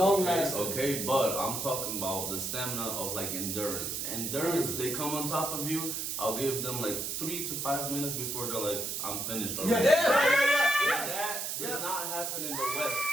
okay? lasting. Okay, but I'm talking about the stamina of like endurance. Endurance, they come on top of you. I'll give them like 3 to 5 minutes before they're like, I'm finished already. yeah. That does Yeah. not happen in the West.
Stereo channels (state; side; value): noise; right; hiss, 3 dB below the sound